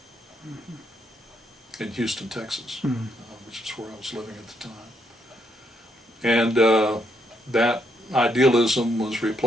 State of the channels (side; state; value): both; normal; correlation 0.76